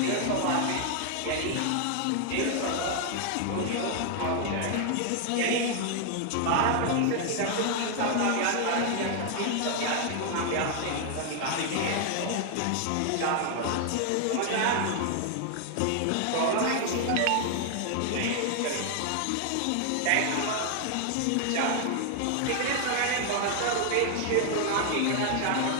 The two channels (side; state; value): both; different; correlation 0.00